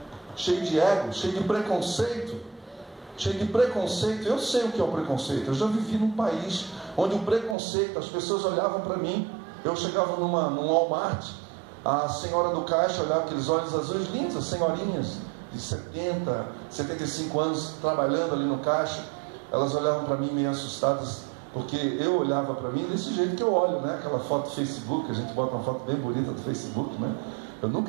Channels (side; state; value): left; drops out; at 7.6 s